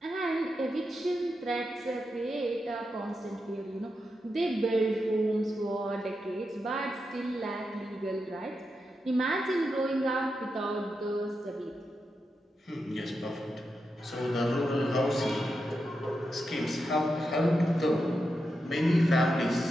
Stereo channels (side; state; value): both; normal; correlation 0.87